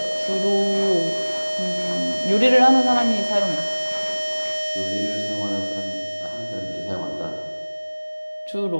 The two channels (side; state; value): both; inverted; correlation -1.00